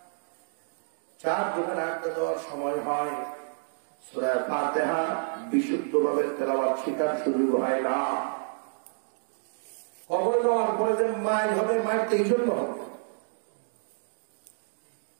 চার দোকানে আড্ডা দেওয়ার সময় হয়, সূরা ফাতিহা বিশুদ্ধভাবে তেলাওয়াত শেখার সুযোগ হয় না। কবরে যাওয়ার পরে যে মাইল হবে, মাইলটা এই জন্য হবে।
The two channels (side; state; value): left; silent; digital silence